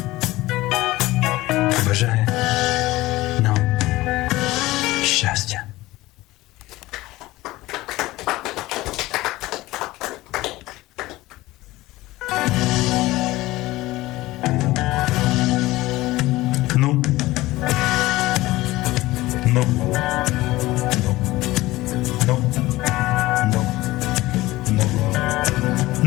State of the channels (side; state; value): right; quieter; 18.4 dB